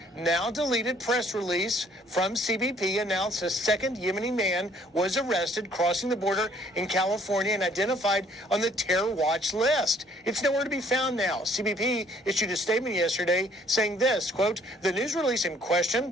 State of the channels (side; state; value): both; normal; correlation 0.61